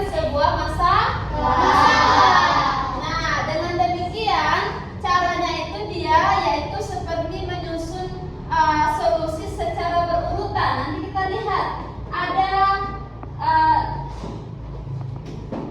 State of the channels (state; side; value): identical; both; correlation 1.00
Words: sebuah masalah. Nah, dengan demikian caranya itu dia yaitu seperti menyusun solusi secara berurutan. Nanti kita lihat ada